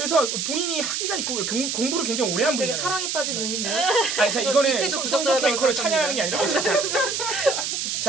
본인이 학위가 있고 공부를 굉장히 오래 한 되게 분이에요. 사랑에 빠진 눈인데. 아니 자 저 이거는 밑에도 손석희 부적절하다고 앵커를 찬양하는 게 아니라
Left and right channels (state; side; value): noise; right; hiss, 2 dB below the sound